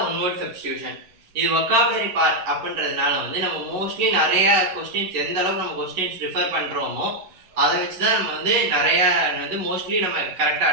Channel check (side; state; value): left; late; 11 ms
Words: ஒன் வேர்ட் சப்ஸ்டியூஷன். இது வொக்காபுலரி பார்ட் அப்படின்றதுனால வந்து நம்ம மோஸ்ட்லி நிறையா கொஸ்டின்ஸ் எந்த அளவுக்கு நம்ம கொஸ்டின்ஸ் ரிஃபர் பண்ணுறோமோ அதை வச்சு தான் நம்ம வந்து நிறையா வந்து மோஸ்ட்லி நம்ம கரெக்டாக